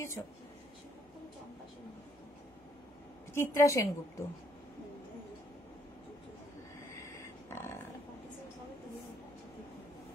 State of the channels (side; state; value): both; normal; correlation 0.68